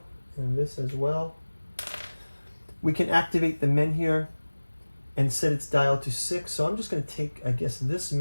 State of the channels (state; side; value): inverted; both; correlation -1.00